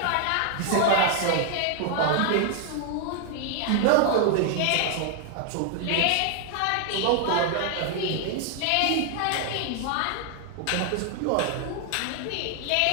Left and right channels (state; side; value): different; both; correlation 0.00